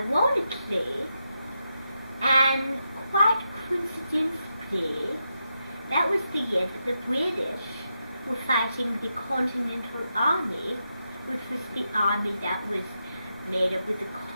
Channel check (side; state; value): both; inverted; correlation -0.85